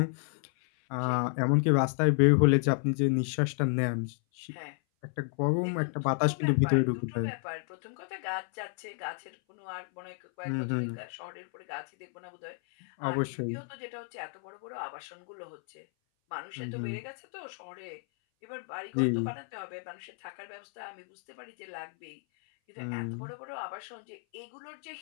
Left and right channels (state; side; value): silent; right; 56 dB below the other